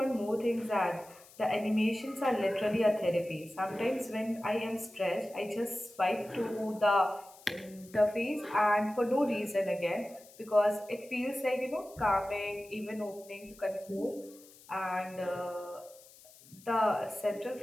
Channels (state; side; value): noise; left; hiss, 23 dB below the sound